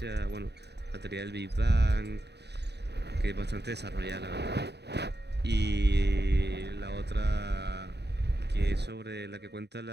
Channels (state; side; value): late; left; 0.49 ms